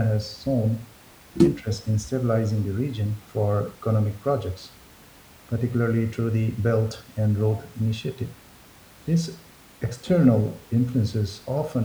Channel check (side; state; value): both; identical; correlation 1.00